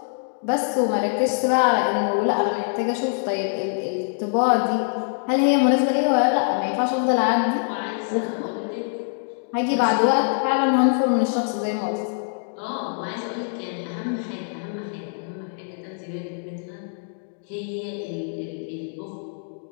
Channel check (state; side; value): silent; right; digital silence